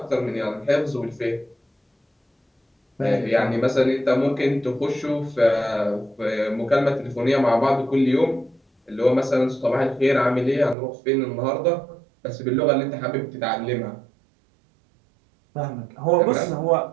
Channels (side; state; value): left; drops out; at 10.8 s